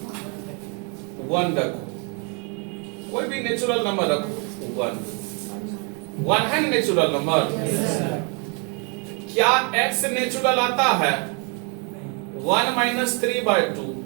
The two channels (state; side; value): quieter; left; 35.4 dB